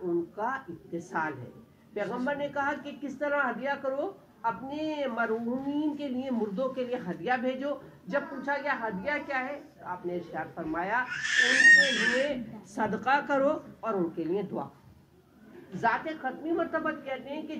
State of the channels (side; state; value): both; identical; correlation 1.00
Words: ان کا اتصال ہے۔ پیغمبر نے کہا کہ کس طرح ہدیہ کرو، اپنے مرحومین کے لیے، مردوں کے لیے ہدیہ بھیجو۔ جب پوچھا گیا ہدیہ کیا ہے، آپ نے ارشاد فرمایا ان کے لیے صدقہ کرو اور ان کے لیے دعا کرو۔ ذات ختمی مرتبہ کہتے ہیں کہ